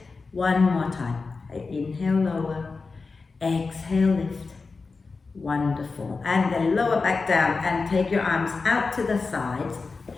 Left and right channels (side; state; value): right; quieter; 4.2 dB